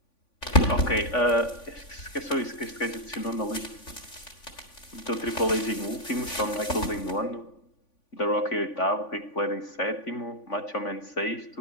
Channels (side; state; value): right; late; 3.5 ms